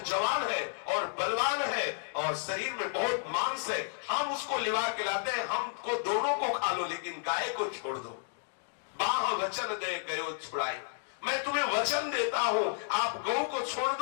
जवान है और बलवान है और शरीर में बहुत मांस है, हम उसको लिवा के लाते हैं, हमको दोनों को खा लो लेकिन गाय को छोड़ दो। बाह वचन दे गयो छुड़ाई, मैं तुम्हें वचन देता हूं, आप गौ को छोड़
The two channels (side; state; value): right; silent; 56 dB below the other